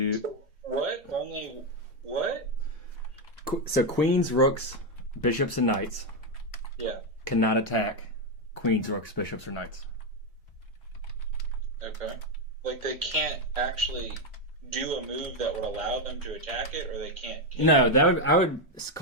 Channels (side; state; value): both; normal; correlation 0.05